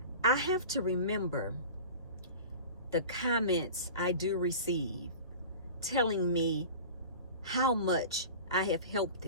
I have to remember the comments I do receive telling me how much I have helped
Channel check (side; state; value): both; inverted; correlation -0.37